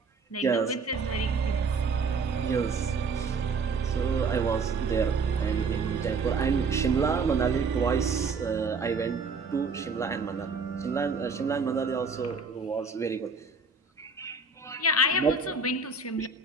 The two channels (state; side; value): quieter; left; 4.3 dB